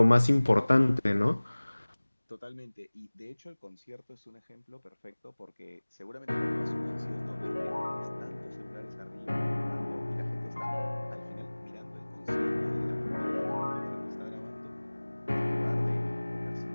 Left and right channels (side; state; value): both; inverted; correlation -1.00